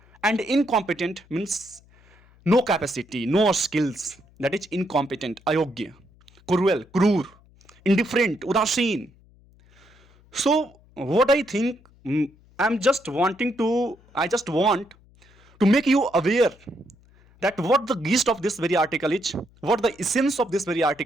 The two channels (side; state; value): left; noise; hum, 29 dB below the sound